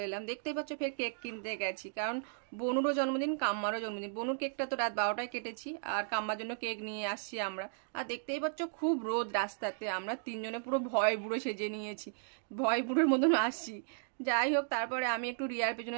এলাম। দেখতেই পাচ্ছ ফের কেক কিনতে গেছি, কারণ বনুরও জন্মদিন, কাম্মারও জন্মদিন। বনুর কেকটা তো রাত 12টায় কেটেছি, আর কাম্মার জন্য কেক নিয়ে আসছি আমরা। আর দেখতেই পাচ্ছ খুব রোদ রাস্তাতে, আমরা তিনজনে পুরো ভয় বুড়ো সেজে নিয়েছি, ভয় বুড়োর মতন আসছি। যাই হোক, তারপরে আমি একটু রিয়ার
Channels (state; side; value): silent; left; digital silence